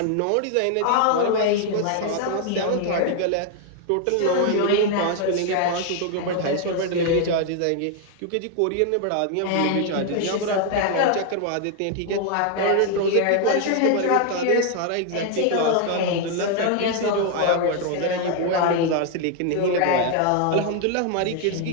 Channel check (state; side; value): different; both; correlation 0.00